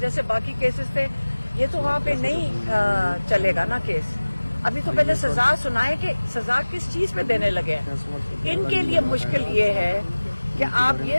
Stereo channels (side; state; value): both; inverted; correlation -1.00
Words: باقی کیسز تھے یہ تو وہاں پہ نہیں چلے گا نا کیس، ابھی تو پہلے سزا سنائے کہ سزا کس چیز پہ دینے لگے ہیں۔ ان کے لیے مشکل یہ ہے کہ آپ